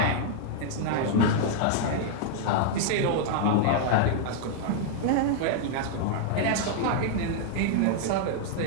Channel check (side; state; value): both; different; correlation -0.01